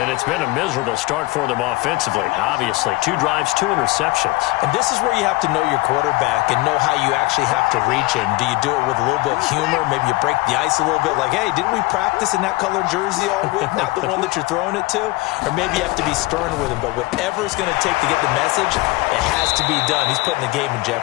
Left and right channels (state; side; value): quieter; right; 21.4 dB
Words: it's been a miserable start for them offensively, obviously. 2 drives, 2 interceptions. And this is where you have to know your quarterback and know how you actually have to reach him. Do you do it with a little bit of humor? Maybe you break the ice a little bit like, hey, didn't we practice in that color jersey all week? Not the one that you're throwing it to? Or maybe you have to be stern with him. But whatever it's going to take to get the message, it has to be done. He's putting the game in